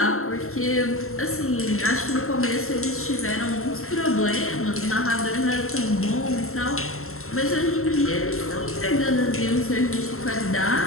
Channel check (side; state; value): right; late; 0.62 ms